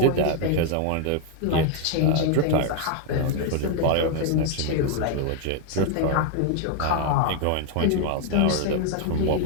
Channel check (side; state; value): both; different; correlation 0.00